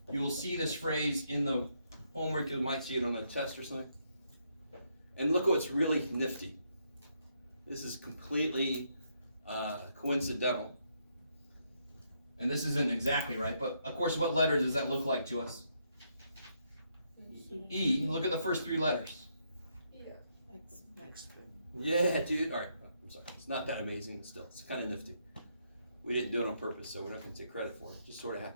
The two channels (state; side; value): inverted; both; correlation -0.76